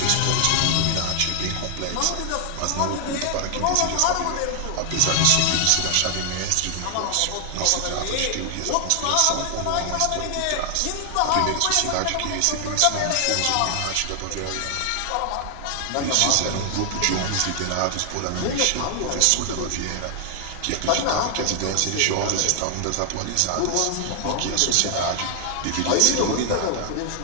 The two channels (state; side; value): different; both; correlation 0.00